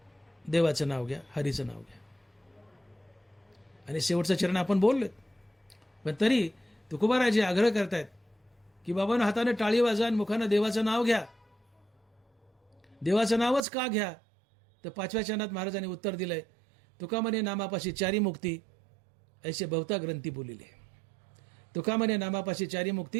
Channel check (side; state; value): left; drops out; at 13.7 s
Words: देवाचं नाव घ्या, हरीचं नाव घ्या. आणि शेवटचं चरण आपण बोललो, पण तरी तुकोबाराजी आग्रह करतायत की बाबांनो, हाताने टाळी वाजा आणि मुखानं देवाचं नाव घ्या. देवाचं नावच का घ्या? तर 5व्या चरणात महाराजांनी उत्तर दिलंय, तुका म्हणे नामापाशी चारी मुक्ती ऐसे बहुता ग्रंथी बोलिले. तुका म्हणे नामापाशी चारी